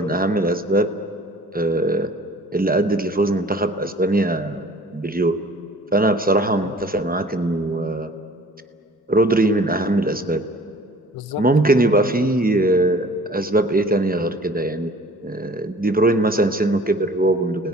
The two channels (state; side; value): normal; both; correlation 0.49